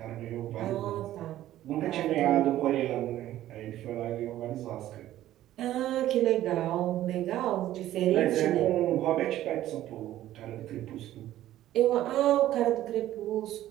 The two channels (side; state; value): left; quieter; 13.6 dB